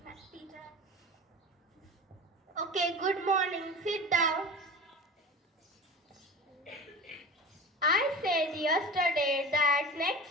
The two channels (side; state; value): both; normal; correlation 0.32